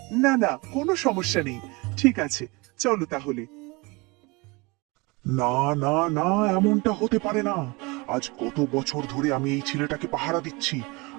না না, কোনো সমস্যা নেই। ঠিক আছে, চলো তাহলে। না না না, এমনটা হতে পারে না। আজ কত বছর ধরে আমি এই ছেলেটাকে পাহারা দিচ্ছি।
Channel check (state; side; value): quieter; left; 26.1 dB